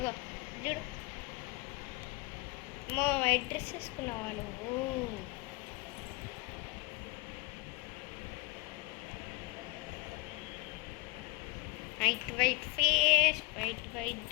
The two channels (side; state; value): right; quieter; 25.7 dB